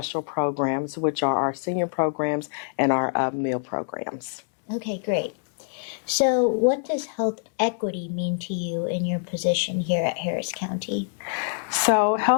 programs, which are our senior programs and our meal programs. Okay, great. So what does health equity mean to you in your position here at Harris County? So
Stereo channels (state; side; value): silent; right; digital silence